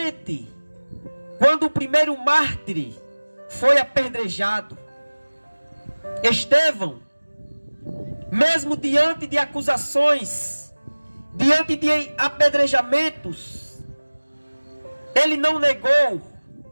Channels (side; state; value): both; inverted; correlation -1.00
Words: quando o primeiro mártir foi apedrejado. Estevão, mesmo diante de acusações, diante de apedrejamentos, ele não negou